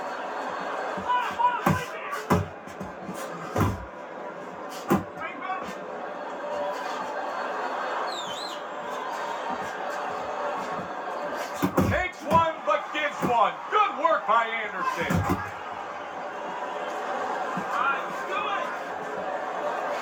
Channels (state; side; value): identical; both; correlation 1.00